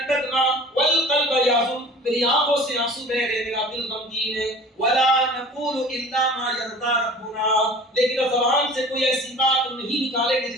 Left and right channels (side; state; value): both; normal; correlation 0.44